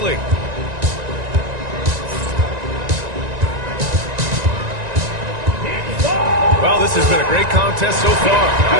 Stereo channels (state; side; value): late; left; 1.9 ms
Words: Well, this has been a great contest so far. I